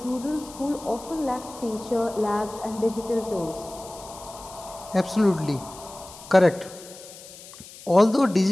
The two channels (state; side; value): noise; left; hiss, 17 dB below the sound